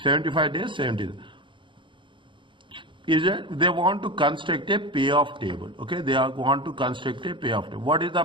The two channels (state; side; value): late; left; 0.24 ms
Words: 75 days, 70. Is it? They want to construct a payoff table. Okay? They want to construct a payoff table. What is the